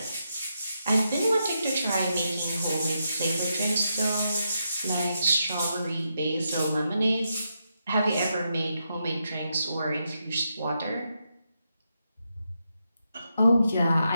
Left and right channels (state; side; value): inverted; both; correlation -0.83